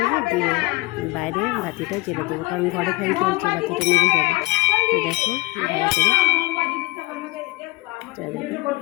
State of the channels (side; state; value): right; quieter; 21.6 dB